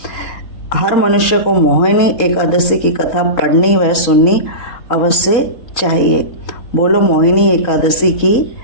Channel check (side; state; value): right; late; 3.7 ms